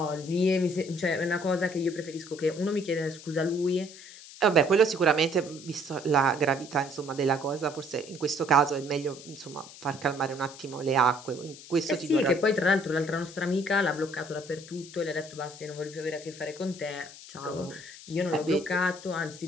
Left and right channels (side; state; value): left; noise; hiss, 17 dB below the sound